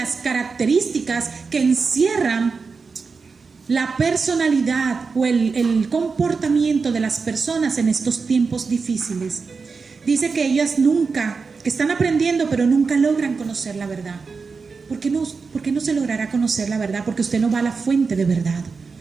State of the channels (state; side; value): quieter; left; 4.8 dB